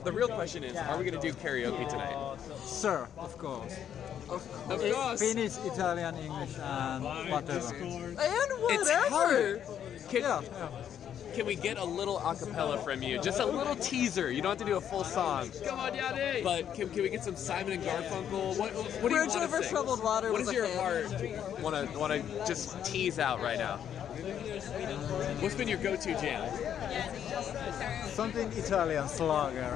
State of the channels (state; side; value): quieter; right; 9.4 dB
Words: real question is, are we going to do karaoke tonight? Sir, of course. Of course. Finnish, Italian, English, and whatever. And whatever. Can we get a little acapella from you? Just a little teaser. You don't have to do a full song. Come on, Yanni. But can we get some Simon and Garfunkel? What do you Bridge want to over sing? troubled water What was does a your hit. heart want to just tease out right now? What's been your go-to jam? Something Italian, Slager.